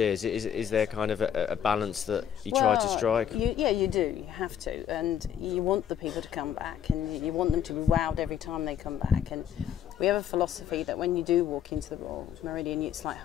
Is there kind of a balance that you try to strike? You do. You have to, and you want the people to come back, and you want them to be wowed every time they come back. And we have a philosophy that when you do walk into the Royal Meridian, it's like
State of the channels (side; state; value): right; quieter; 9.2 dB